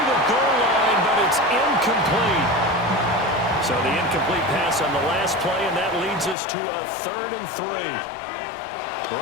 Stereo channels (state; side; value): drops out; right; at 6.4 s